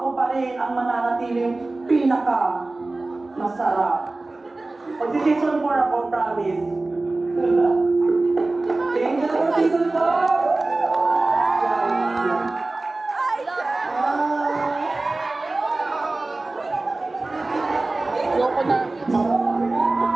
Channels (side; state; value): left; quieter; 3.1 dB